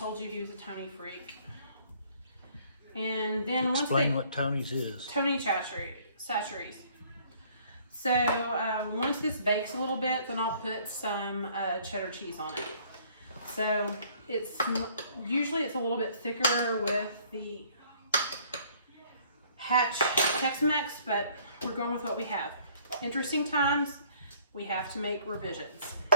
you he was a Tony freak. And then Explain what Tony's is. Tony Chachere's. So once this bakes a little bit, then I'll put some cheddar cheese on it. So usually it's a little bit thicker with the Hatch Tex-Mex, but we're going with what we have. Interesting times, we have to make revisions.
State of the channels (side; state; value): both; inverted; correlation -0.59